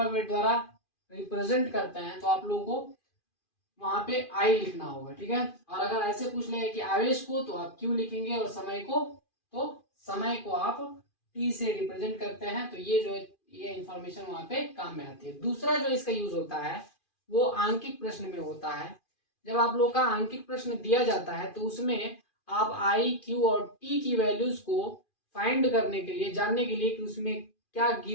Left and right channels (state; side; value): late; right; 2.4 ms